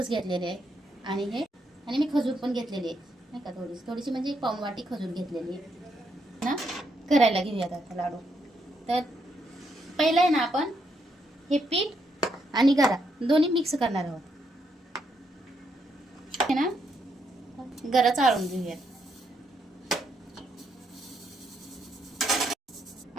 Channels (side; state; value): both; normal; correlation 0.77